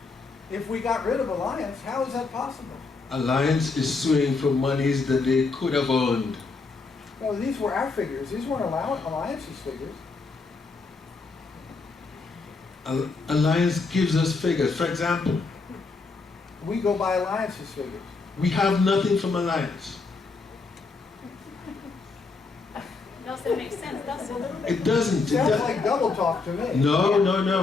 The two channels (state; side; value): quieter; right; 4.1 dB